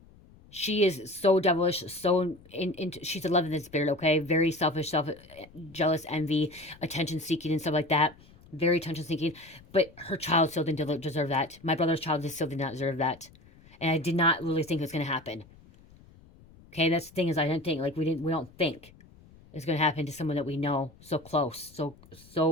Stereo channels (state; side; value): noise; left; rumble, 25 dB below the sound